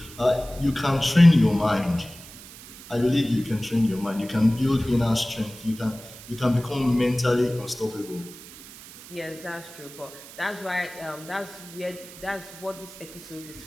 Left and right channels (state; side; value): noise; right; hiss, 17 dB below the sound